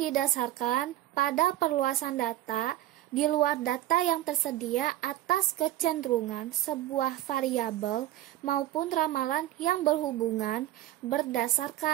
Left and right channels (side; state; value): left; quieter; 14.4 dB